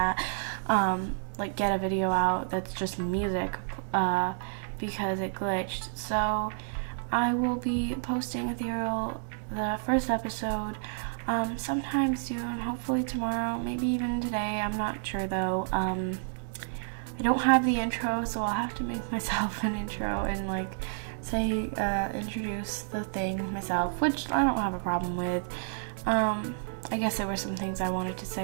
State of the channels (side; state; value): left; silent; digital silence